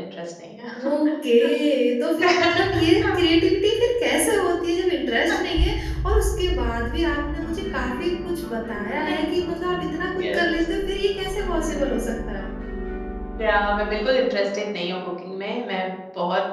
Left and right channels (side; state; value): both; identical; correlation 1.00